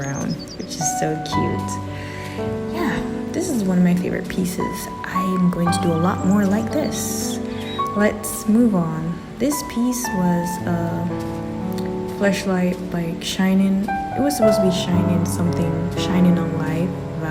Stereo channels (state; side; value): identical; both; correlation 1.00